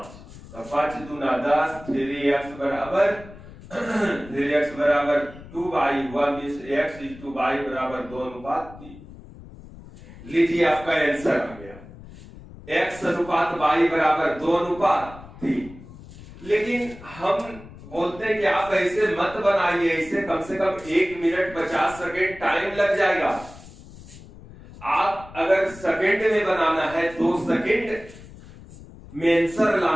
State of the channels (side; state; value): left; noise; rumble, 18 dB below the sound